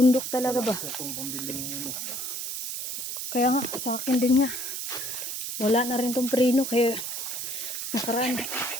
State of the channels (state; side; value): noise; right; hiss, 4 dB below the sound